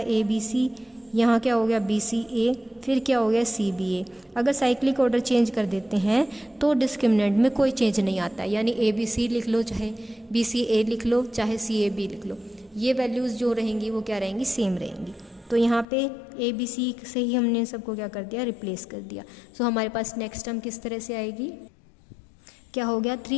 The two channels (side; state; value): right; drops out; at 15.9 s